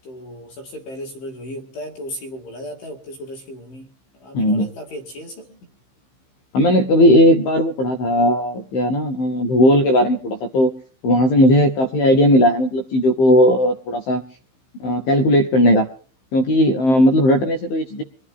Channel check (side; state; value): right; late; 15 ms